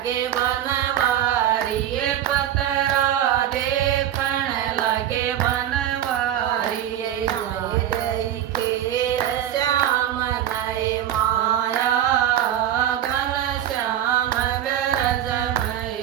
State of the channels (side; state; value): left; quieter; 11.1 dB